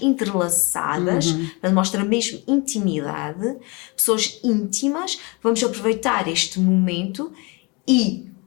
entrelaçadas, mostra mesmo intimidade, pessoas íntimas. Vamos aproveitar este momento e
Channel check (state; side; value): quieter; right; 28.4 dB